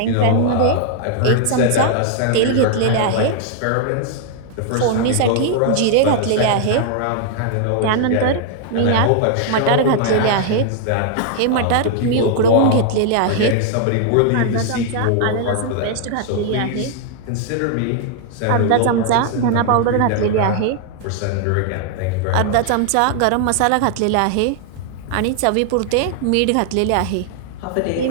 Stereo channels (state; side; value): different; both; correlation 0.00